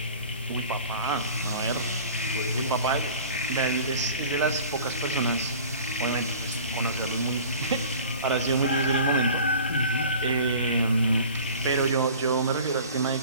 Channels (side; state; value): both; inverted; correlation -0.43